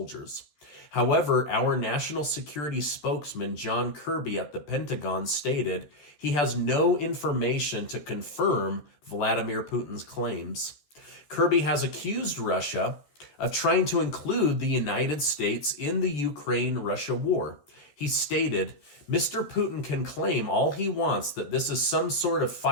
However, our national security spokesman, John Kirby at the Pentagon, stated he has no information to confirm Vladimir Putin's claims. Kirby has accused Russia of trying to include the United States in the Ukraine-Russia war. He stated, "Mr. Putin can claim all he wants that this is some sort of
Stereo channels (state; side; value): late; right; 14 ms